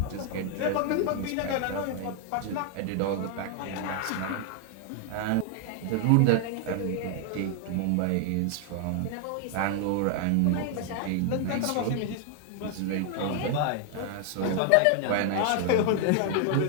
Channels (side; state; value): both; different; correlation 0.00